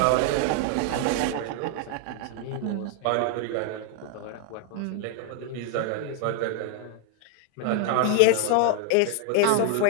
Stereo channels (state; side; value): different; both; correlation 0.00